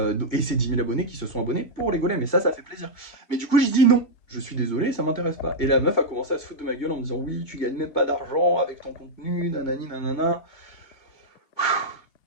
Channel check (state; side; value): late; right; 2.8 ms